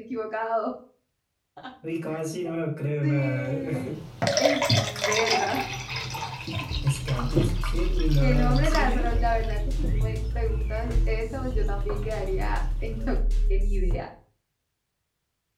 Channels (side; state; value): both; identical; correlation 1.00